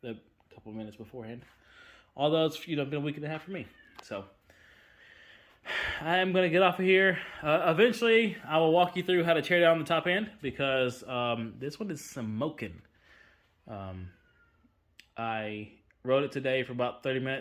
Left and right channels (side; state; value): both; identical; correlation 1.00